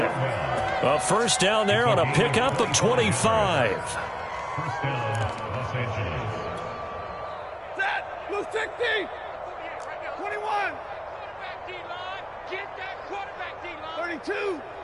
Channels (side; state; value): both; identical; correlation 1.00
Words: A first down there on a pickup of 25. Set. Blue 60. 21. Get that quarterback, D-line. 32.